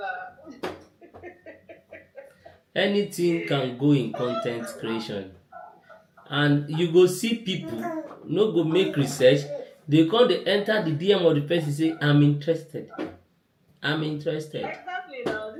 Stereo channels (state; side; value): identical; both; correlation 1.00